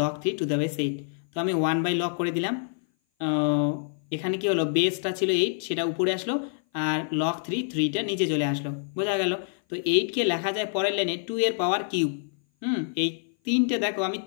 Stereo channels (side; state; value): right; silent; 57 dB below the other